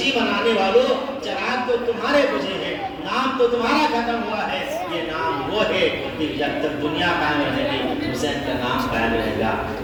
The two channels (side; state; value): both; identical; correlation 1.00